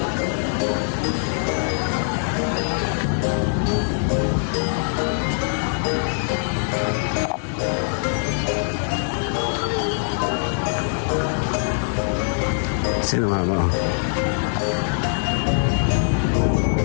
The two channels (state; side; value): silent; right; 64 dB below the other